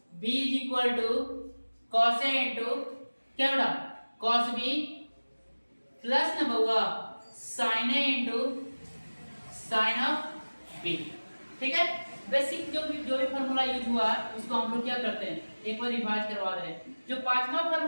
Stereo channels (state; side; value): inverted; both; correlation -1.00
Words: B is equal to cos A into क्या बेटा cos B plus ना बउआ sine A into sine of B, ठीक है। बेसिक जो भी फार्मूला यूज हुआ है उसको हम लोग क्या करते हैं एक बार रिवाइज करवा रहे हैं। जो पांचवा